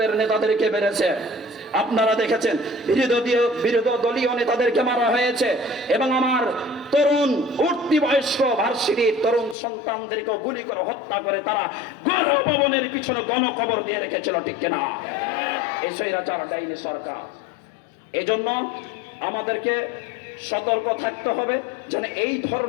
নেতাদেরকে মেরেছে। আপনারা দেখেছেন, বিরোধী দলীয় নেতাদেরকে মারা হয়েছে, এবং আমার তরুণ উঠতি বয়স্ক ভার্সিটির তরুণ সন্তানদেরকে গুলি করে হত্যা করে তারা গণভবনের পিছনে গণকবর দিয়ে রেখেছিল, ঠিক কিনা? এই স্বৈরাচার ডাইনি সরকার। এজন্য আমাদেরকে সতর্ক থাকতে হবে যেন এই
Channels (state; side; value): drops out; right; at 9.6 s